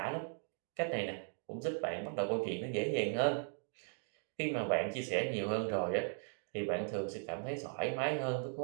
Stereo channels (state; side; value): silent; left; 52 dB below the other